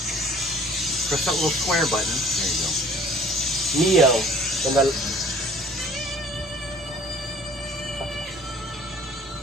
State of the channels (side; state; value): both; normal; correlation 0.51